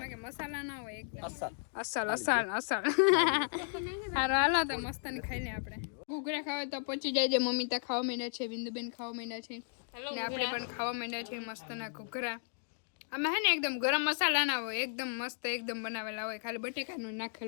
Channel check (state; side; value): silent; right; digital silence